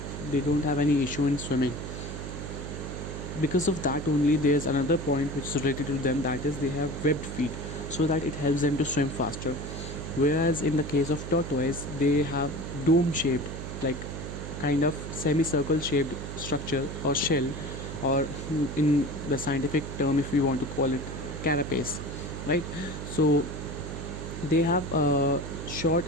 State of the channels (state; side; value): noise; right; hum, 7 dB below the sound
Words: they don't have any issue in swimming. Because of that only, there's another point which is related to them, that is they have webbed feet, so that it helps them to swim faster. Whereas in the case of tortoise, they have dome shaped, like kind of semicircle shaped structure or shell, or in the scientific term, if we want to call it, carapace, right? So they have short